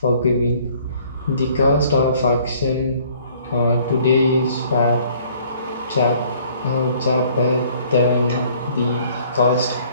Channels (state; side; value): inverted; both; correlation -0.58